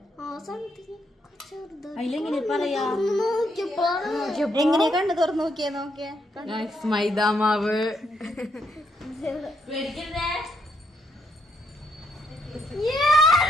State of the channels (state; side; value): normal; both; correlation 0.76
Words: എങ്ങനെയാ കണ്ണ് തുറന്ന് നോക്കിയേ മൈദാമാവ്